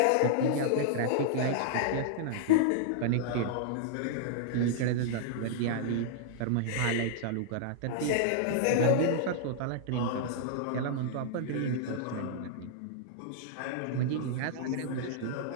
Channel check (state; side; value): different; both; correlation -0.01